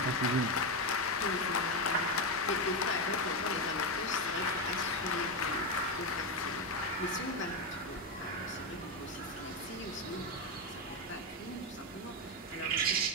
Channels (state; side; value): normal; both; correlation 0.10